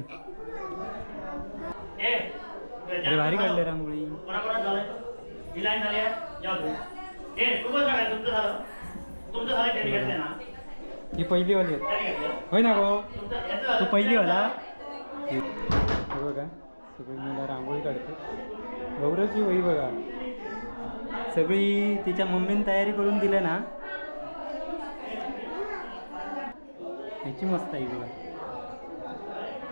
अरे भारी काढले रांगोळी. ही पहिली वाली होय ना गो तू पहिली वाला. हे बघा सगळी मुलं रांगोळी काढते. गौरवची वही बघा सगळी तिच्या मम्मीने तयारी करून दिल्या ना. ह्याची मस्त आहे बघा.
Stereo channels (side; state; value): both; inverted; correlation -1.00